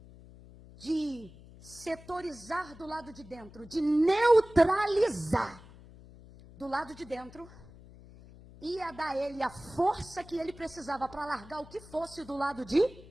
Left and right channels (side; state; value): left; noise; hum, 20 dB below the sound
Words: de setorizar do lado de dentro, de neutralizar do lado de dentro, ia dar a ele a força que ele precisava para largar o que fosse do lado de